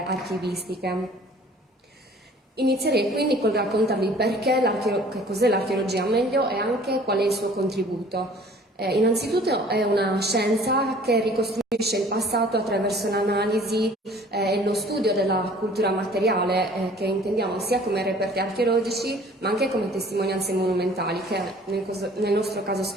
archivistiche. Inizierei quindi col raccontarvi che cos'è l'archeologia meglio e anche qual è il suo contributo. Innanzitutto è una scienza che ricostruisce il passato attraverso l'analisi e lo studio della cultura materiale, che intendiamo sia come reperti archeologici ma anche come testimonianze monumentali, che nel nostro caso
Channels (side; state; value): both; normal; correlation 0.51